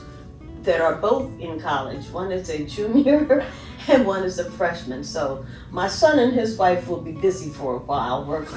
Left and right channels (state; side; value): identical; both; correlation 1.00